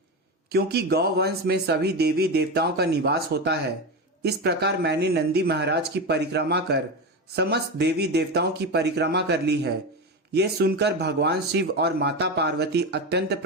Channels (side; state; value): both; normal; correlation 0.18